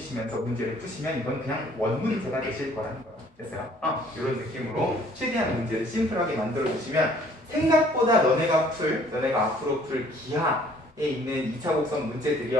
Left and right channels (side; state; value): both; normal; correlation 0.58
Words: 문제를 푸시면 이건 그냥 원 문제가 되실 거라는 거예요. 됐어요? 이런 느낌으로 최대한 문제를 심플하게 만들어 주시면 생각보다 너네가 앞으로 풀 기하에 있는 2차 곡선